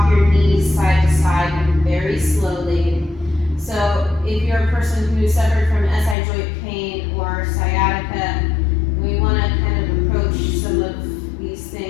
your knees side to side very slowly. So if you're a person who suffered from SI joint pain or sciatica, we want to kind of approach some of these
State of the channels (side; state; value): right; drops out; at 6.2 s